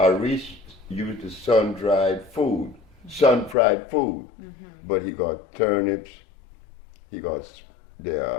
use the sun-dried food, sun-fried food. But he got turnips, he got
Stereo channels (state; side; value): drops out; right; at 3.6 s